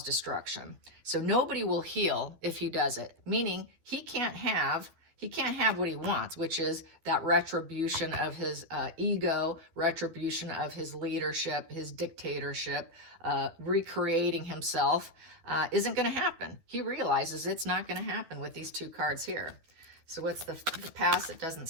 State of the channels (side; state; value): left; late; 12 ms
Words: destruction. So nobody will heal if he does it, meaning he can't have what he wants, which is that retribution of his ego, retribution of his leadership, his dictatorship, recreating himself, isn't going to happen. He realizes it's not going to happen with these 2 cards here. So what's the past that doesn't